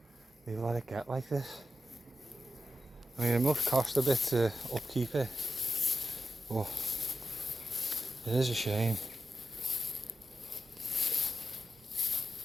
they let it get like this. I mean, it must cost a bit to upkeep it, but it is a shame.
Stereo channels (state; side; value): normal; both; correlation 0.89